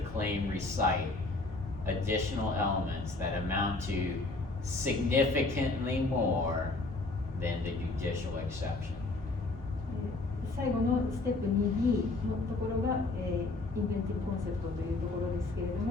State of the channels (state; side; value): quieter; right; 3.2 dB